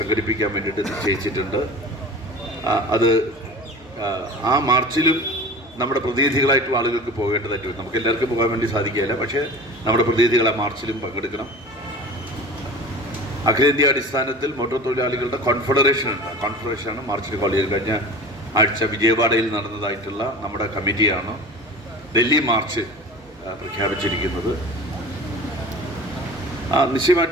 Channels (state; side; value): normal; both; correlation 0.37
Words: വേണ്ടിയിട്ട് നിശ്ചയിച്ചിട്ടുണ്ട്. അത് ആ മാർച്ചിലും നമ്മുടെ പ്രതിനിധികളായിട്ടുള്ള ആളുകൾക്ക് പോകേണ്ടതായിട്ട് വരും. നമുക്ക് എല്ലാവർക്കും പോകാൻ വേണ്ടി സാധിക്കുകയില്ല, പക്ഷേ നമ്മുടെ പ്രതിനിധികൾ ആ മാർച്ചിലും പങ്കെടുക്കണം. അഖിലേന്ത്യാ അടിസ്ഥാനത്തിൽ മോട്ടോർ തൊഴിലാളികളുടെ കോൺഫെഡറേഷൻ ഉണ്ട്. കോൺഫെഡറേഷനാണ് മാർച്ചിൽ കോൾ ചെയ്ത് കഴിഞ്ഞ ആഴ്ച വിജയവാഡയിൽ നടന്നതായിട്ടുള്ള നമ്മുടെ കമ്മിറ്റിയാണ് ഡൽഹി മാർച്ച് പ്രഖ്യാപിച്ചിരിക്കുന്നത്.